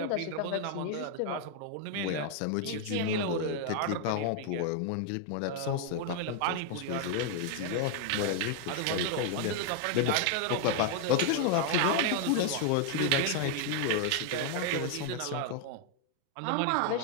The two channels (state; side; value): different; both; correlation 0.00